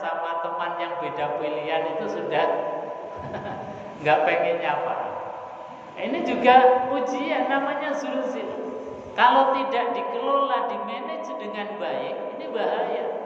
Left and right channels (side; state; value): both; identical; correlation 1.00